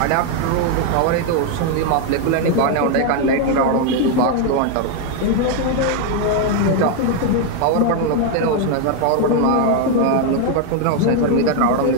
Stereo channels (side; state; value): both; different; correlation 0.01